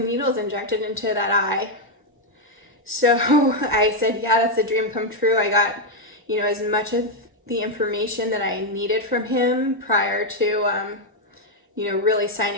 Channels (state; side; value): normal; both; correlation 0.01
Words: needles injected into that eye? So I said, yeah, that's a dream come true. I got, as much of the information that I needed from him prior to, really